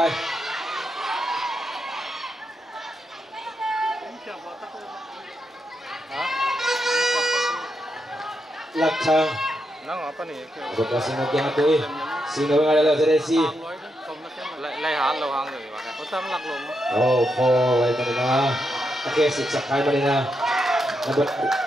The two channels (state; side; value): normal; both; correlation 0.83